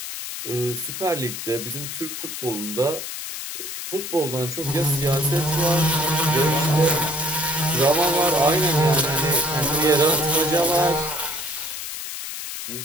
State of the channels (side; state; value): left; noise; hiss, 7 dB below the sound